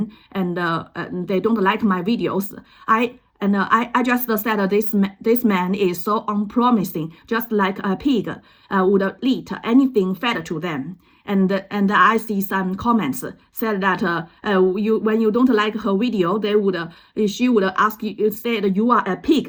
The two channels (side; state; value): both; identical; correlation 1.00